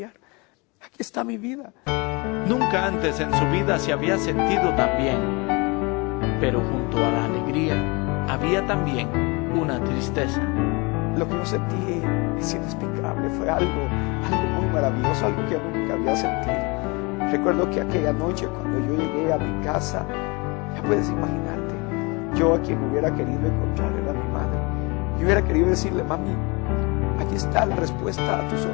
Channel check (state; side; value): quieter; right; 27.9 dB